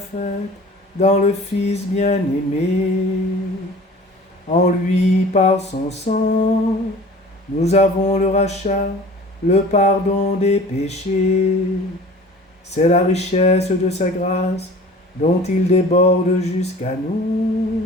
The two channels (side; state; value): both; normal; correlation 0.44